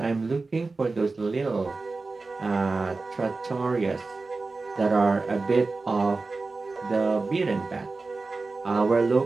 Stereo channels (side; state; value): left; quieter; 3.7 dB